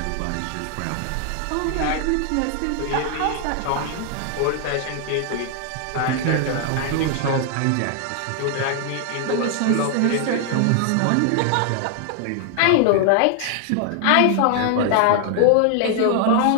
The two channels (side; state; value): both; different; correlation 0.00